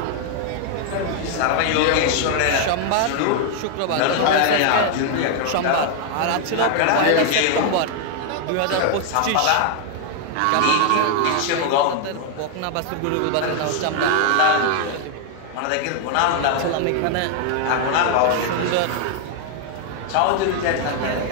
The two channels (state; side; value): different; both; correlation 0.00